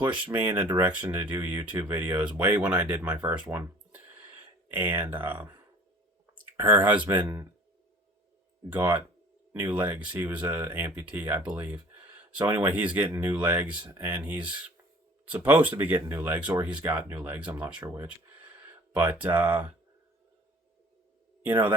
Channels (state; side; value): normal; both; correlation 0.49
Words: me in a direction to do YouTube videos way when I did my first one. And her husband got new legs. He was a amputee, I believe. So anyway, he's getting new legs, and he's supposed to be getting new legs, or he's got new legs. I'm not sure which. But,